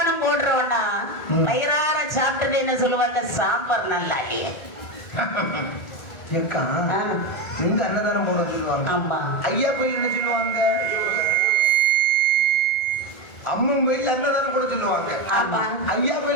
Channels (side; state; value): right; late; 1.4 ms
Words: போடுறோம்னா வயிறார சாப்பிட்டது என்ன சொல்லுவாங்க? சாம்பார் நல்லா இல்லையே. நீங்க அன்னதானம் போட சொல்லுவாங்க. ஆமா. ஐயா கோயில் என்ன சொல்லுவாங்க? அம்மன் கோயில் அன்னதானம் கூட சொல்லுவாங்க. ஐயா